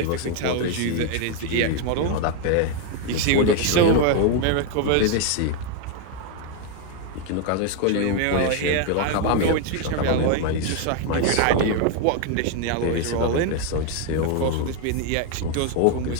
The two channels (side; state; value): both; different; correlation 0.01